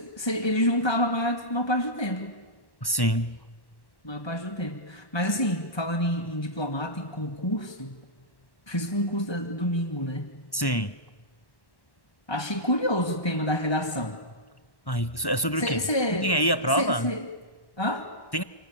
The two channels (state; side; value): late; right; 1.1 ms